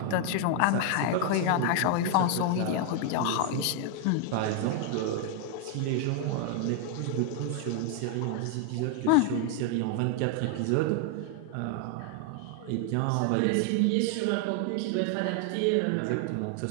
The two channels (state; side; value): different; both; correlation 0.00